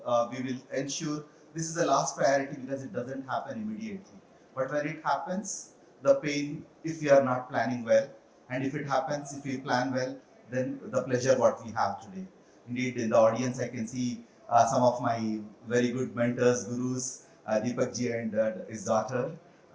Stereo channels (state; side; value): identical; both; correlation 1.00